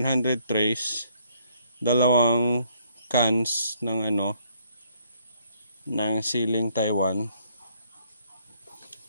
trays, 2 cans ng ng siling Taiwan.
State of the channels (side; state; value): both; inverted; correlation -0.67